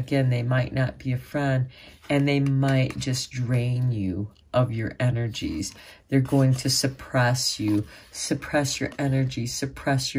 they might not be a friend, and they might just drain you of your energies. They're going to suppress you, suppress your energy, suppress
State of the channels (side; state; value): both; identical; correlation 1.00